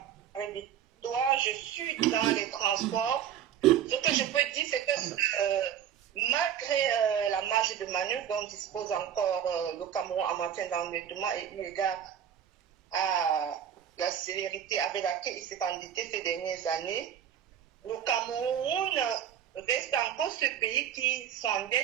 Je suis dans les transports. Ce que je peux dire, c'est que malgré la marge de manœuvre dont dispose encore le Cameroun en matière d'endettement et eu égard à la célérité avec laquelle il s'est endetté ces dernières années, le Cameroun reste encore ce pays qui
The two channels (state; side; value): quieter; left; 9.6 dB